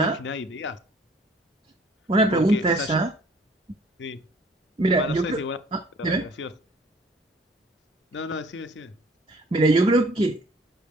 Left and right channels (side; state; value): both; normal; correlation 0.56